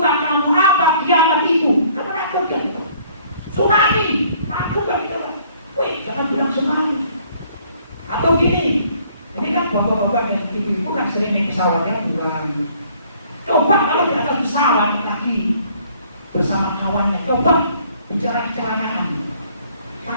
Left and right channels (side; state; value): both; inverted; correlation -0.60